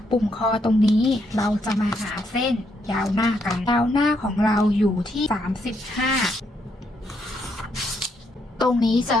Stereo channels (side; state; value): both; normal; correlation 0.76